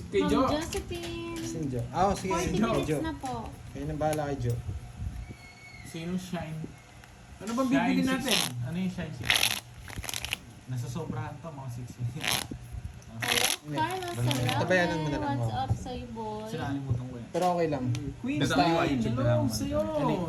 kay Ma'am Jo. Josephine. Si Jo. Ah, sige. 40 Jo. minutes Jo. na po. Kayo na bahala kay Jo. Sino Shine? Ano bang bibili natin? Ano yung Shine 16? Nasa sobrahan to, mga 16. Hello, Carlos Tabayanan mo na lang, Salame. What's oh. up sa'yo, boy? Sinalimutan ko yan. Pero okay lang. Queen Basta Style, may YouTube na hello naman. sa'yo.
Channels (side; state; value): both; identical; correlation 1.00